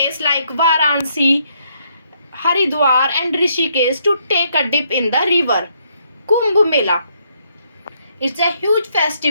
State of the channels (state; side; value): inverted; both; correlation -0.72